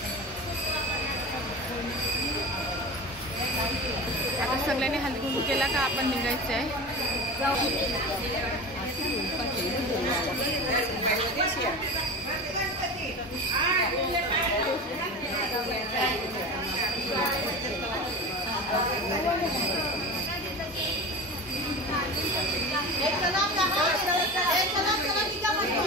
आता सगळ्यांनी हळदी कुंकू केला का आपण निघायचं आहे।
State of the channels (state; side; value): normal; both; correlation 0.29